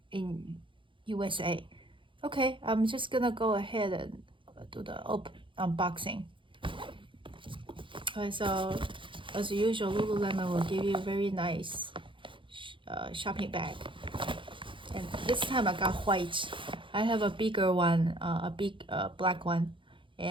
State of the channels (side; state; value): left; late; 0.24 ms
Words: in USA. Okay, I'm just gonna go ahead and do the unboxing. Okay, so as usual, Lululemon will give you a very nice shopping bag. And this time I got white. I have a bigger one, a big black one,